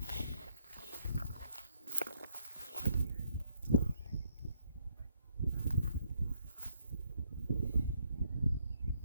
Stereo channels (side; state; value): both; inverted; correlation -0.70